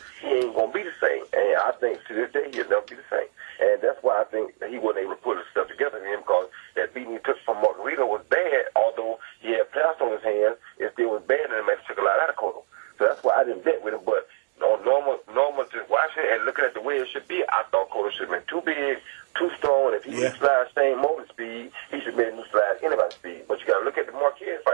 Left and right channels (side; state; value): left; silent; digital silence